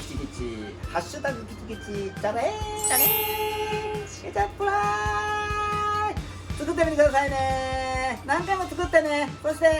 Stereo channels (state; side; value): identical; both; correlation 1.00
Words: チキチ、ハッシュタグキチキチ、チャレー、チャレー、ケチャップライス。作ってみてくださいね。何回も作ってね。そして、